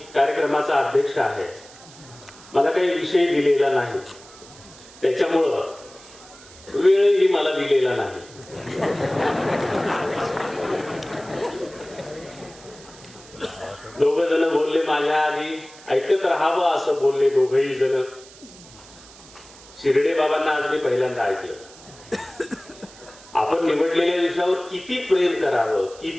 कार्यक्रमाचा अध्यक्ष आहे. मला काही विषय दिलेला नाही, त्याच्यामुळं वेळही मला दिलेला नाही. दोघ जण बोलले माझ्या आधी, ऐकत राहावं असं बोलले दोघही जण. शिर्डे बाबांना आज मी पहिल्यांदा ऐकलं. आपण निवडलेल्या विषयावर किती प्रेम करावं,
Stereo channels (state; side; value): noise; right; hiss, 21 dB below the sound